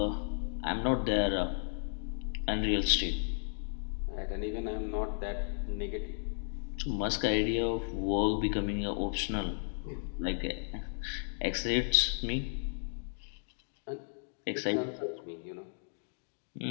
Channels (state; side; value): silent; right; digital silence